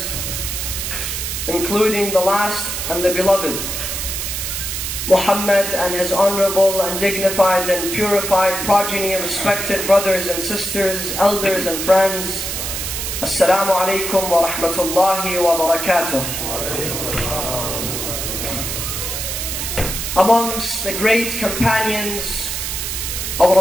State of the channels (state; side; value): noise; right; hiss, 3 dB below the sound